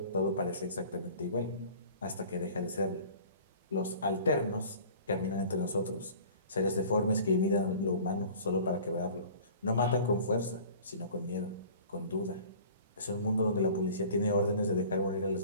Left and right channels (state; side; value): inverted; both; correlation -0.46